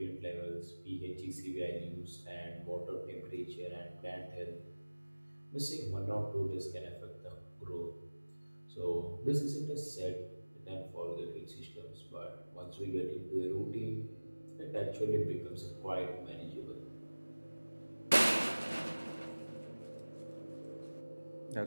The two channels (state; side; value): inverted; both; correlation -1.00